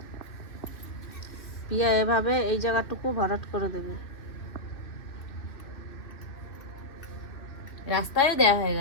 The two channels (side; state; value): right; late; 2.6 ms